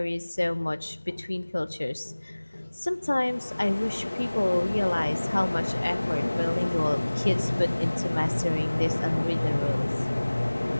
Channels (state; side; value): inverted; both; correlation -1.00